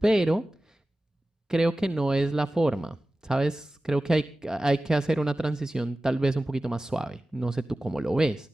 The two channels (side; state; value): both; normal; correlation 0.96